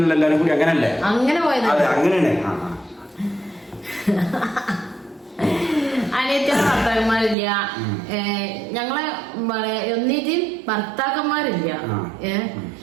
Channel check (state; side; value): drops out; left; at 7.4 s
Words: എല്ലാരും കൂടി അങ്ങനല്ലേ? അങ്ങനെ പോയത്. അതെ, അങ്ങനെയാണ്. അനിയത്തിയുടെ ഭർത്താക്കന്മാരില്ല, ഞങ്ങളെ ഒന്നിച്ചും ഭർത്താക്കന്മാരില്ല.